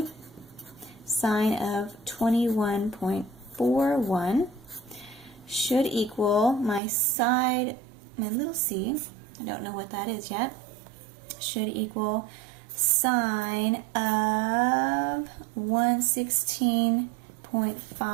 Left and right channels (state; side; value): drops out; left; at 6.8 s